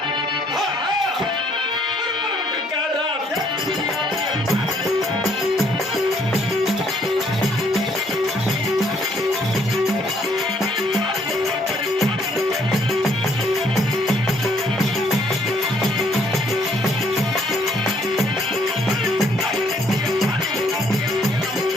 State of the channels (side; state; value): both; normal; correlation 0.66